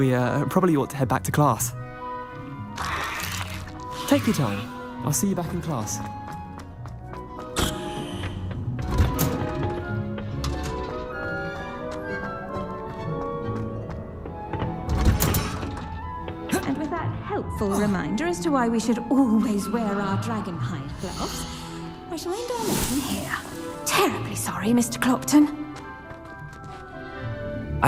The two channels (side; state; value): both; identical; correlation 1.00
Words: probably ought to head back to class. Take your time. I'll see you back in class. Helpful reminder as to why we should always wear our dragon hide gloves. I shall end our lesson here. Terribly sorry, Mr. Clopton.